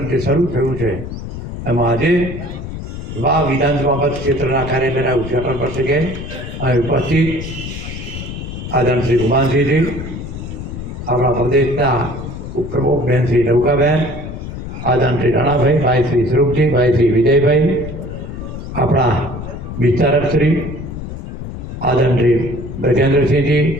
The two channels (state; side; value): noise; left; rumble, 8 dB below the sound